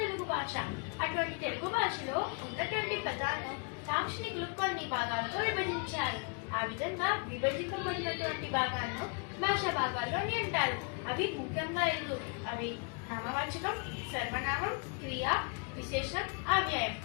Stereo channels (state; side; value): quieter; right; 35.8 dB